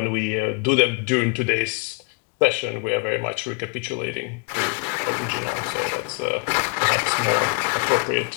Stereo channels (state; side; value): quieter; right; 30.1 dB